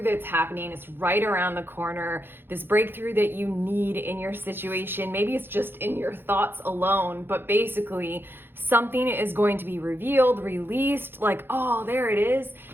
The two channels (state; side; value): late; left; 0.10 ms